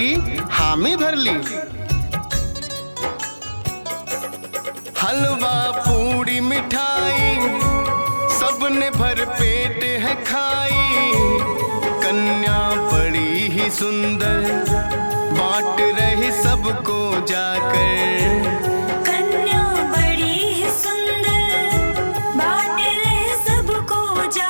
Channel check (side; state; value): both; inverted; correlation -1.00